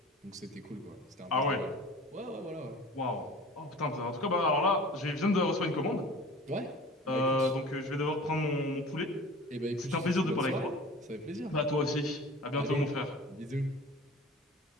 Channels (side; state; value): both; normal; correlation 0.41